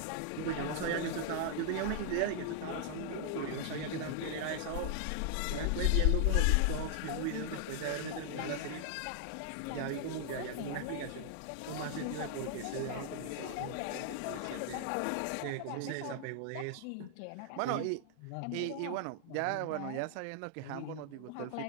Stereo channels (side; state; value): both; different; correlation 0.00